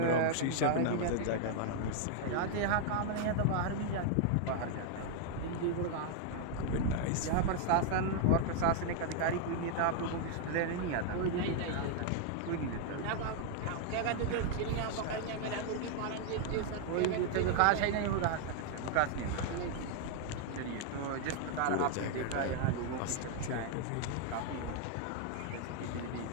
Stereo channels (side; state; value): both; different; correlation 0.00